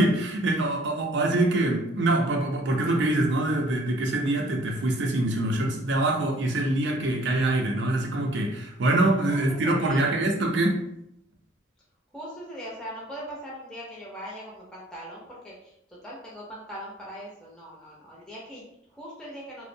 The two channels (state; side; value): normal; both; correlation 0.58